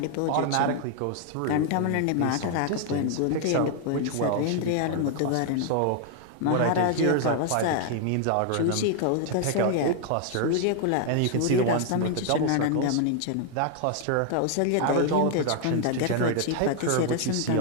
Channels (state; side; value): different; both; correlation 0.00